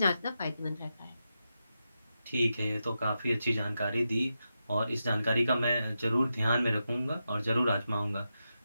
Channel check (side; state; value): both; inverted; correlation -0.88